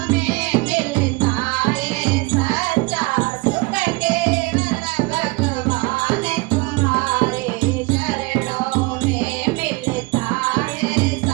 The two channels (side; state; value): left; quieter; 25.2 dB